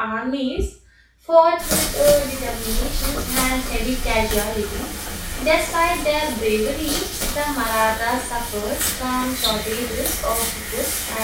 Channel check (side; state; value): both; identical; correlation 1.00